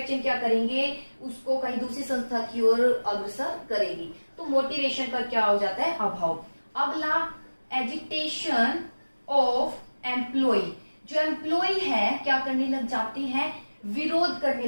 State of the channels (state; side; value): inverted; both; correlation -1.00